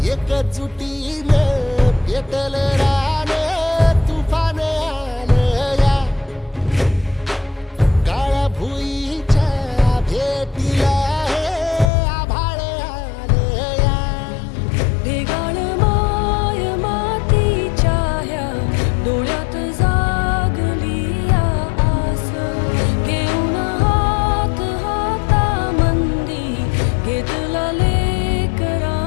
एकजुटीनं पेटल रान तुफान आलया काळ्या भुईच्या भेटीला हे आभाळ आलया ढेगाळ माय मातीच्या ह्या डोळ्यात जागली या आस घेऊन हात हातामंदी घेतला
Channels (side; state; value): right; drops out; at 11.9 s